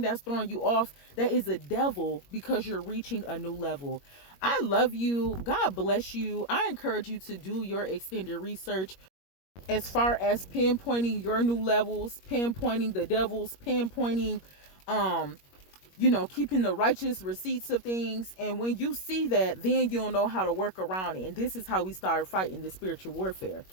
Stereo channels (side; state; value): right; late; 21 ms